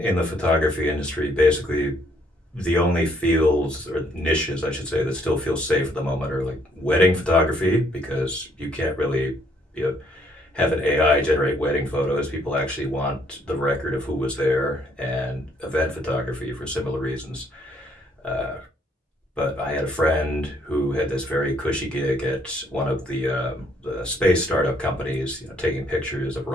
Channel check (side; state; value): both; normal; correlation 0.67